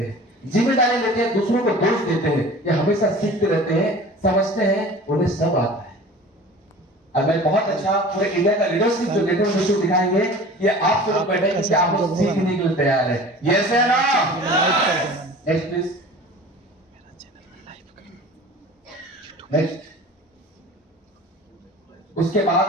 हैं, जिम्मेदारी लेते हैं, दूसरों को दोष देते हैं, या हमेशा सीखते रहते हैं, समझते हैं उन्हें सब आता है। अब मैं बहुत अच्छा पूरे इंडिया का लीडरशिप जो लेटर में दिखाएंगे, ये आप लोग बैठे कि आप लोग सीखने के लिए तैयार है। यस है ना? Next please. नेक्स्ट, उसके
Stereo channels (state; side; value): normal; both; correlation 0.41